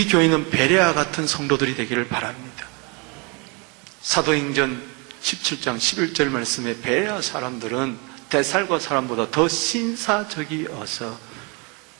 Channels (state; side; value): quieter; left; 31.3 dB